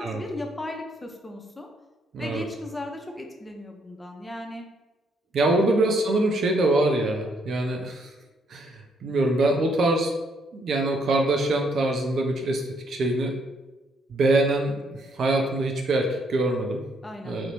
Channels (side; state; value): both; normal; correlation 0.71